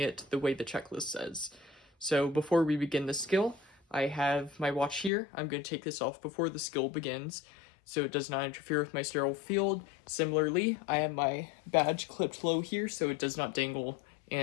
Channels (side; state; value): right; drops out; at 5.1 s